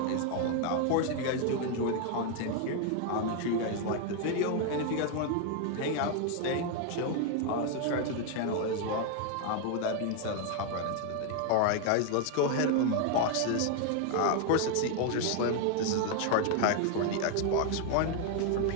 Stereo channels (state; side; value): different; both; correlation 0.01